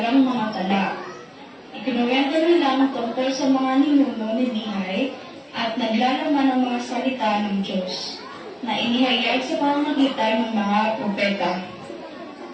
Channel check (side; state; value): both; identical; correlation 1.00